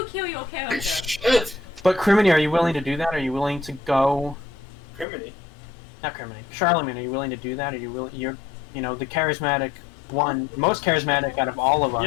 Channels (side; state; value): right; drops out; at 5.1 s